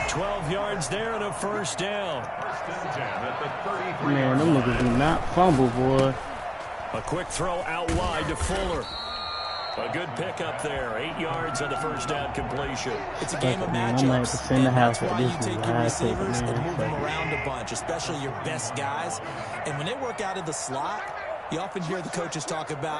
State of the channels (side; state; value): both; identical; correlation 1.00